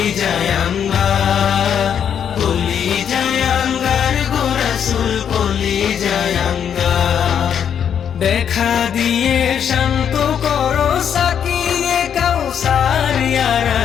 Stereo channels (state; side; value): quieter; right; 8.4 dB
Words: আঙ্গার, কলিজায় আঙ্গার গো রাসূল, কলিজায় আঙ্গার। দেখা দিয়ে শান্ত করো সাকিয়ে কাউসার ইয়া